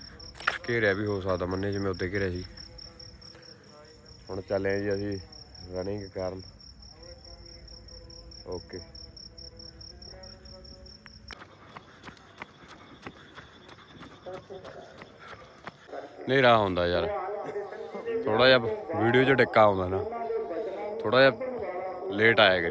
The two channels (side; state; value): both; identical; correlation 1.00